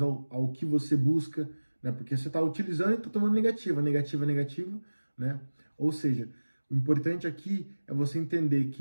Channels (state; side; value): inverted; both; correlation -1.00